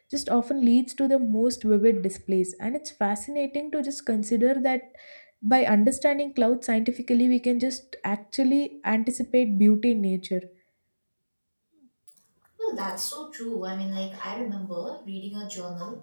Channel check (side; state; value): both; inverted; correlation -1.00